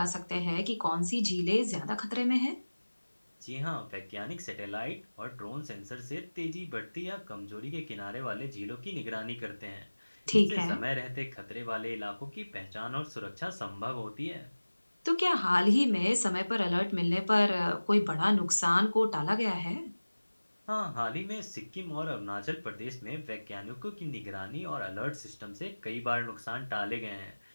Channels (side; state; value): both; inverted; correlation -1.00